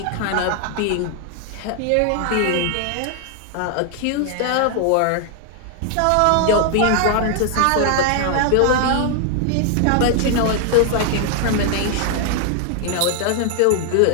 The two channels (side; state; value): both; different; correlation 0.00